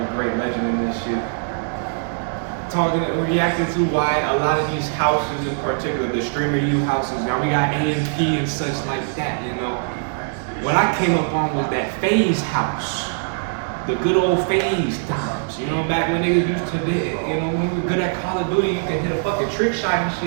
great legend in this shit. Reacting to why a lot of these houses, in particular the Streamer U houses, now we got AMP and such like that. What I came up on was that FaZe house. The good old FaZe times, back when niggas used to be, when we were good at Call of Duty, you could hit a fucking trick shot and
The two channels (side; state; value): left; silent; digital silence